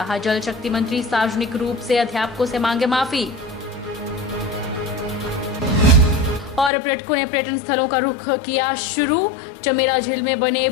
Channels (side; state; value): right; drops out; at 6.7 s